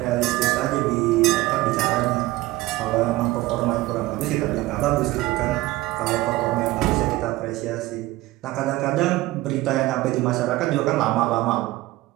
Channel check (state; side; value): quieter; left; 18.3 dB